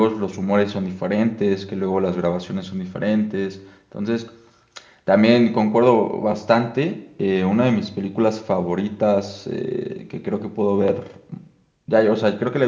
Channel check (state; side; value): identical; both; correlation 1.00